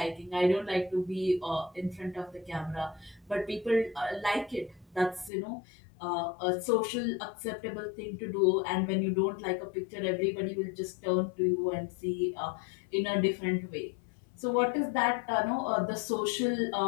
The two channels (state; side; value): drops out; right; at 5.3 s